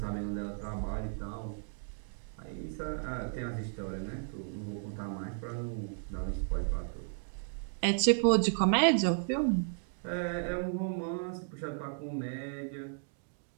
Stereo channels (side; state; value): left; silent; digital silence